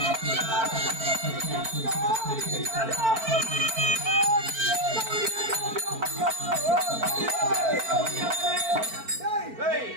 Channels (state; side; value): late; left; 4.5 ms